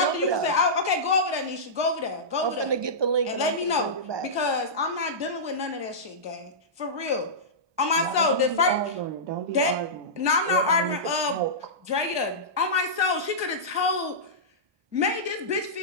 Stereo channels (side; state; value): left; late; 1.2 ms